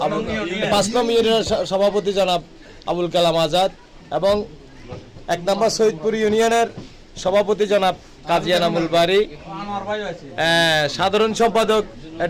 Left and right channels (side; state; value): both; identical; correlation 1.00